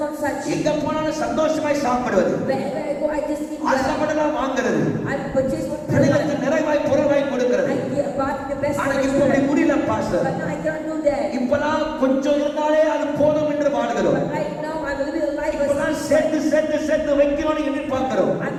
not such. எங்க போனாலும் சந்தோஷமாய் சாப்பிடுவது, Wherever I go, I just eat. ஆசைப்படலாம் வாங்குறது, I purchase what I பிள்ளைகளுக்கு want. நிறைவாய் பொருளாய் கொடுக்கிறது. I give back the best. ஆனா for my இப்ப அப்படி children. முடியல pastor. But now I cannot do that. இப்பெல்லாம் கொஞ்சம் இருந்தாலே அது போதும் என்று வாழ்கிறோம். But right now I'm living a life இப்பெல்லாம் as சேர்த்து வைக்கணும்னு எதிர்பார்க்கிறோம். I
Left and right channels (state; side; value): identical; both; correlation 1.00